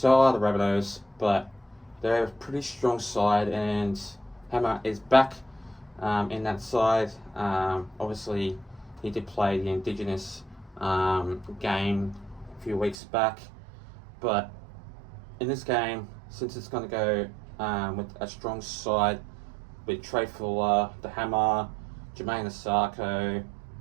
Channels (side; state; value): left; drops out; at 13.0 s